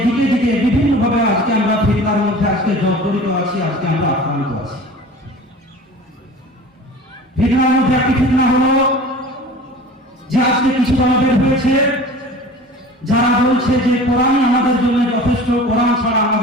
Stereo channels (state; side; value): normal; both; correlation 0.40